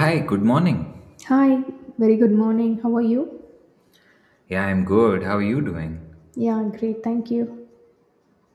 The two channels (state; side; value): identical; both; correlation 1.00